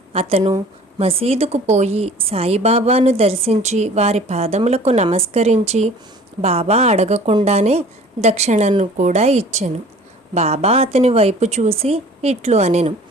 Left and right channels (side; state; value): both; normal; correlation 0.47